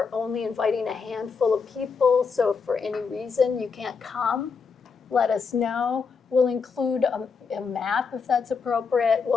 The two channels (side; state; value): right; quieter; 5.4 dB